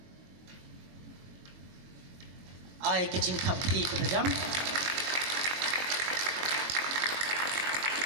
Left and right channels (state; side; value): late; left; 22 ms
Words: I kecing kapti kepadam.